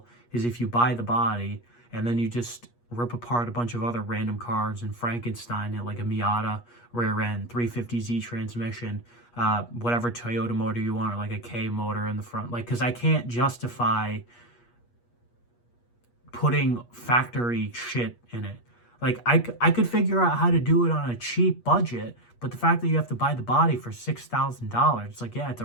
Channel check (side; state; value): right; late; 8.4 ms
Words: is if you buy the body and then you just rip apart a bunch of other random cars and Frankenstein it, like a Miata rear end, 350Z transmission, whatever Toyota motor you want, or like a K motor in the front. Like, because I can't justify putting factory shit in it. Like, I could figure out how to do it on a cheap budget, but the fact that you have to buy the body for $6,000, it's like, yeah, it's a